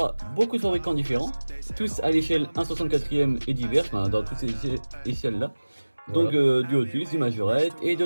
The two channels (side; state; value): both; inverted; correlation -1.00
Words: beaucoup de fabricants différents, tous à l'échelle 1/64e et divers, enfin, dans toutes ces échelles-là. Donc du Hot Wheels, du Majorette et